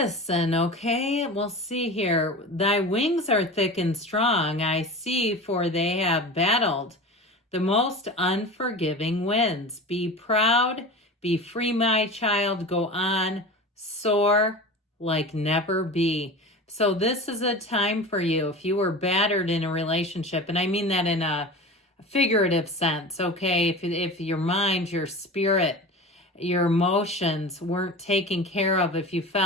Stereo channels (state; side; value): normal; both; correlation 0.32